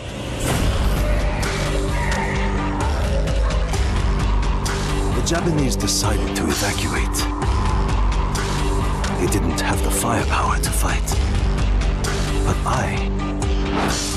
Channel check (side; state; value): both; identical; correlation 1.00